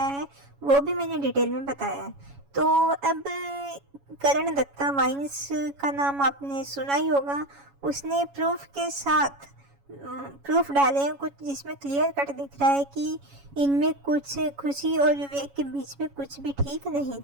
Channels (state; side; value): late; left; 7.2 ms